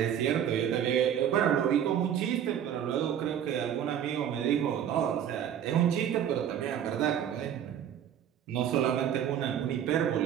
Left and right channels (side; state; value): left; quieter; 9.6 dB